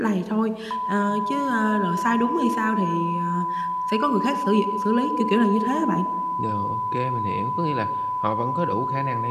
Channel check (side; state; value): both; identical; correlation 1.00